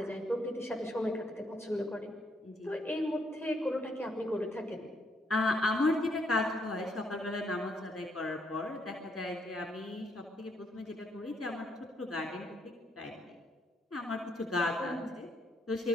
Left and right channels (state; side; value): normal; both; correlation 0.73